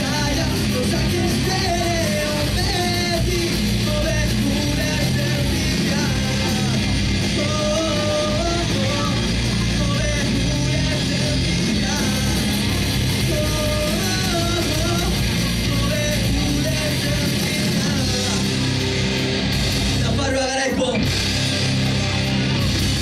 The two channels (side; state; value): both; identical; correlation 1.00